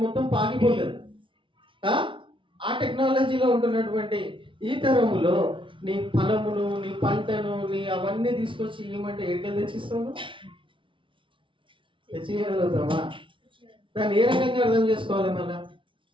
మొత్తం పాకిపోతుంది. ఆ టెక్నాలజీలో ఉంటున్నటువంటి ఈ తరములో నీ ఫలమును, నీ పంటను, నీ అవన్నీ తీసుకొచ్చి ఇవ్వమంటే ఎక్కడికి తెచ్చిస్తావు? తెచ్చియగలుగుతావా? దాన్ని ఏ రకంగా అర్థం చేసుకోవాలి? మళ్ళా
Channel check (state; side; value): late; left; 0.25 ms